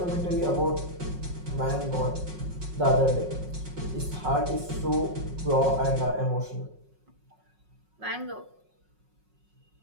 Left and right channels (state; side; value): late; left; 5.4 ms